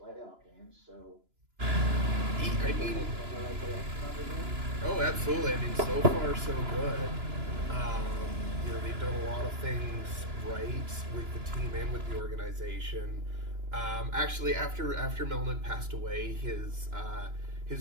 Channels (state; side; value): late; left; 2.9 ms